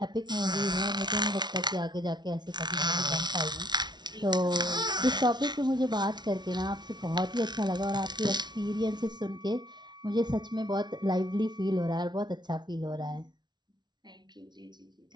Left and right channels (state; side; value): late; left; 0.20 ms